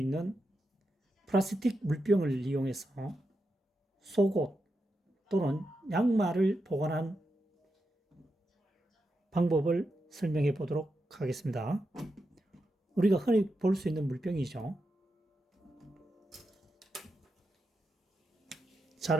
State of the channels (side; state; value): both; normal; correlation 0.87